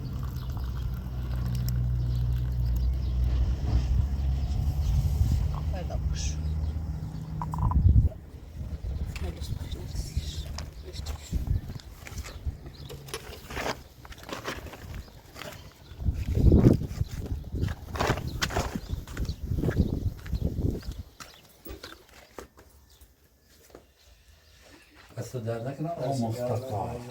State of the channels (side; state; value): both; identical; correlation 1.00